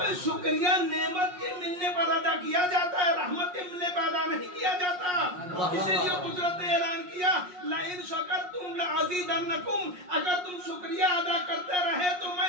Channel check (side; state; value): left; late; 5.5 ms